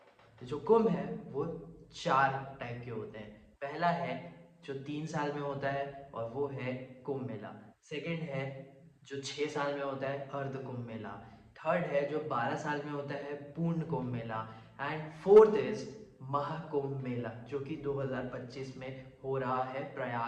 तो जो कुंभ है वो 4 टाइप के होते हैं। पहला है जो 3 साल में होता है और वो है कुंभ मेला। सेकंड है जो 6 साल में होता है, अर्ध कुंभ मेला। थर्ड है जो 12 साल में होता है, पूर्ण Kumbh Mela. And fourth is Mahakumbh मेला, जो कि 2025 में हो रहा है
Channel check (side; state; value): both; identical; correlation 1.00